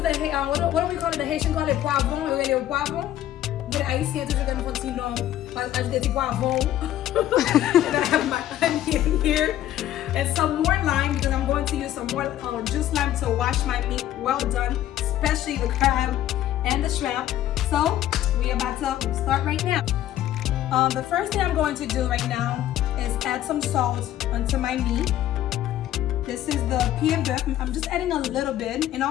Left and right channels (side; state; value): right; quieter; 12.7 dB